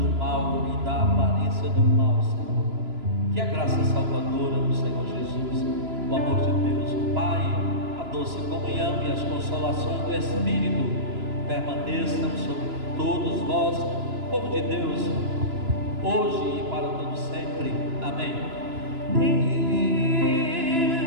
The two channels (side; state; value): left; late; 2.9 ms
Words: mal e da aparência do mal, Senhor. Que a graça salvadora do Senhor Jesus, o amor de Deus, o Pai, a doce comunhão e as consolações do Espírito permaneçam sobre todos vós, povo de Deus, hoje e para todo sempre. Amém.